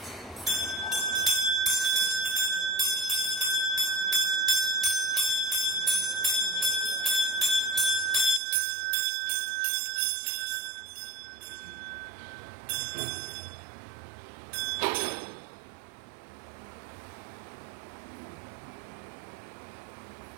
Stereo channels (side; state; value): left; drops out; at 8.4 s